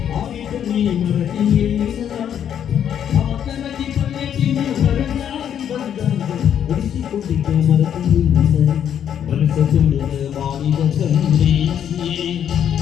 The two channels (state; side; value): quieter; right; 9.2 dB